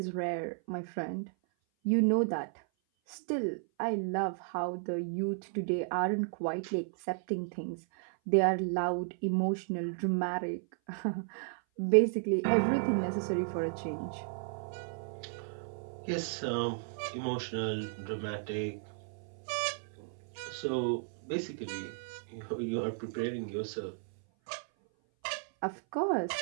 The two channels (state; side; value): silent; left; 55 dB below the other